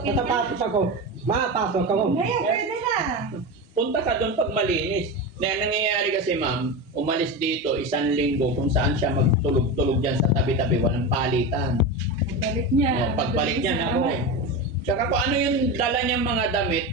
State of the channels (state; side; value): normal; both; correlation 0.21